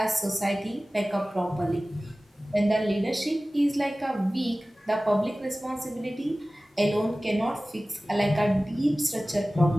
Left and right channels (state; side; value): normal; both; correlation 0.97